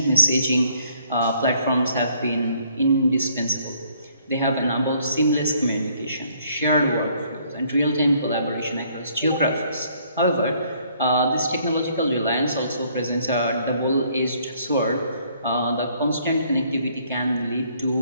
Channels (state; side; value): inverted; both; correlation -0.64